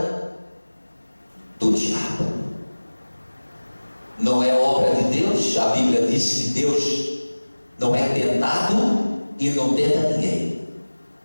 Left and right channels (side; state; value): both; inverted; correlation -1.00